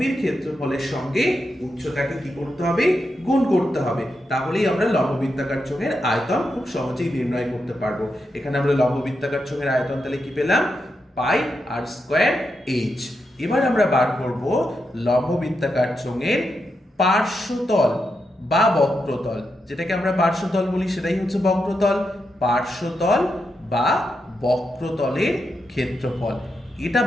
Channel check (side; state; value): both; normal; correlation 0.85